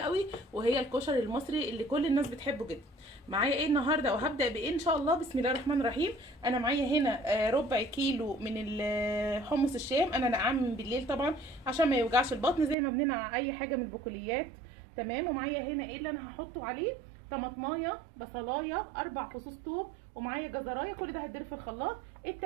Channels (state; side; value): drops out; left; at 12.8 s